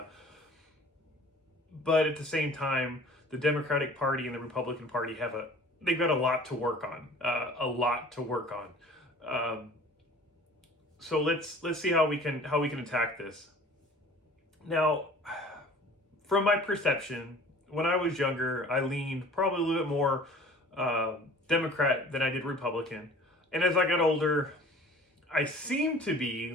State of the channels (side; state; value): both; normal; correlation 0.47